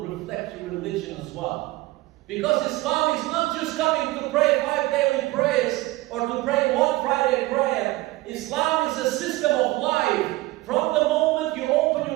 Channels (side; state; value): left; quieter; 19.3 dB